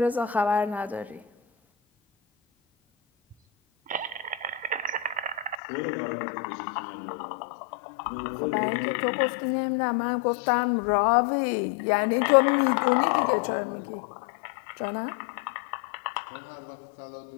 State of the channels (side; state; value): right; drops out; at 5.6 s